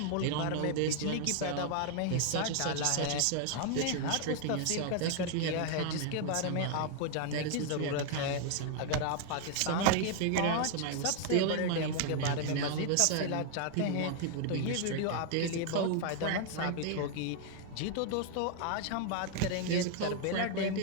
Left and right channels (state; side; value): different; both; correlation 0.00